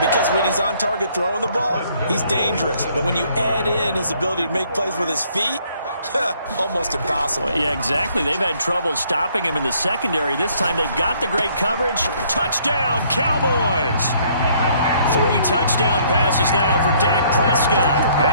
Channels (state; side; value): inverted; both; correlation -0.64